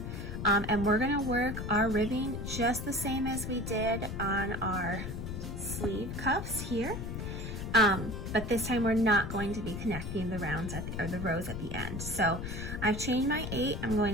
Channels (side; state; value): left; noise; rumble, 6 dB below the sound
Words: And we're gonna work our ribbing just the same as we did on our sleeve cuffs here. But this time we're not going to be connecting the rounds or the rows at the end. So I've chained my 8. I'm going